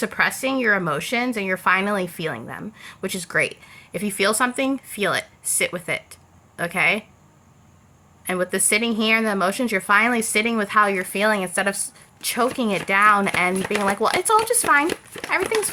your emotions and you're finally feeling them, which is great. If you feel something, feel it. Sit with it. Okay? And with the sitting here and the emotions, you're finally sitting with how you're feeling instead of choking it down and being like, well, it's all just fine. Everything's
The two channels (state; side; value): identical; both; correlation 1.00